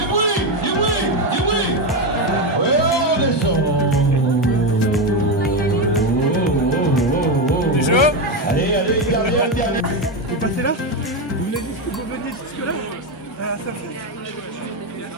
bruit, du bruit, du bruit. Ouais, on descend. Du jeu. Allez, allez, dernière, dernière. Vous passez là? Vous venez jusque là? À faire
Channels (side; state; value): both; normal; correlation 0.11